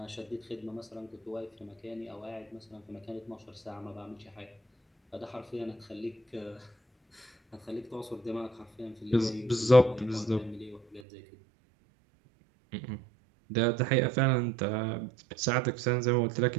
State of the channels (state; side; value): drops out; left; at 11.0 s